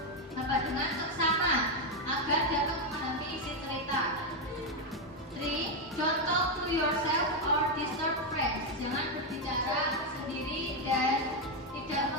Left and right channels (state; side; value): normal; both; correlation 0.04